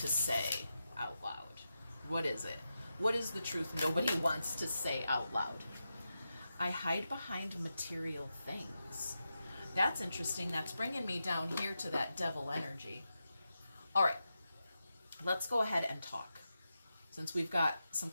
to say out loud. What is it? What is the truth nobody wants to say out loud? I hide behind material things. That's interesting. That's bringing me down here to that devil energy. All right. Let's go ahead and talk. Since we've got some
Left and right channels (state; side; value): inverted; both; correlation -0.89